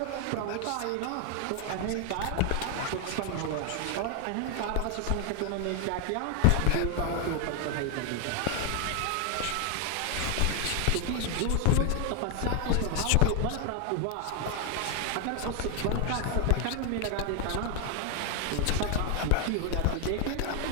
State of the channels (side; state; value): both; different; correlation 0.00